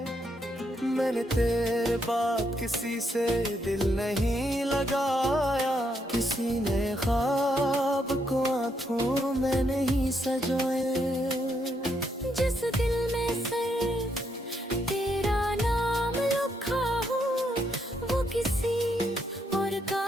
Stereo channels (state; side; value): normal; both; correlation 0.77